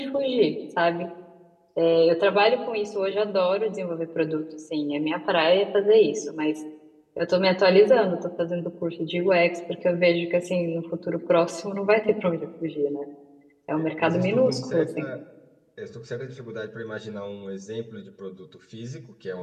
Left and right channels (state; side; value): identical; both; correlation 1.00